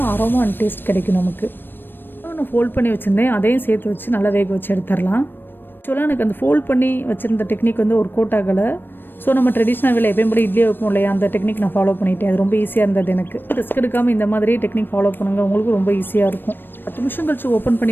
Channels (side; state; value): right; late; 0.096 ms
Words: அரோமா அண்ட் டேஸ்ட் கிடைக்கும் நமக்கு. நான் ஃபோல்ட் பண்ணி வச்சுருந்தேன், அதையும் சேர்த்து வச்சு நல்லா வேக வச்சு எடுத்துடலாம். ஆக்சுவலாக எனக்கு அந்த ஃபோல்ட் பண்ணி வச்சுருந்த டெக்னிக் ஒர்க் அவுட் ஆகலை. ஸோ நம்ம ட்ரெடிஷ்னல் வேலை எப்பயும் போல இட்லியை வைப்போம் இல்லையா, அந்த டெக்னிக் நான் ஃபாலோ பண்ணிட்டேன். அது ரொம்ப ஈஸியாக இருந்தது எனக்கு. ரிஸ்க் எடுக்காமல் இந்த மாதிரி டெக்னிக் ஃபாலோ பண்ணுங்கள், உங்களுக்கு ரொம்ப ஈஸியாக இருக்கும். 10 நிமிஷம் கழிச்சு ஓப்பன்